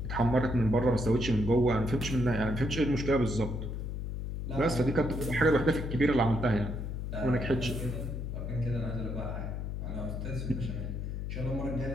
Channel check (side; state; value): left; noise; hum, 4 dB below the sound